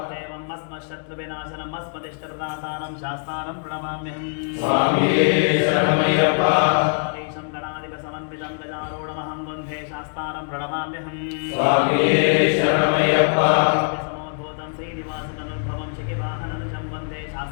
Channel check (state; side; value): silent; right; digital silence